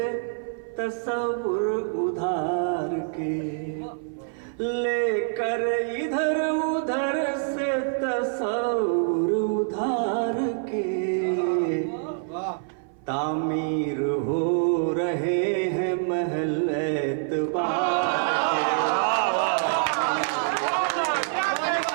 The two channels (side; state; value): left; silent; 59 dB below the other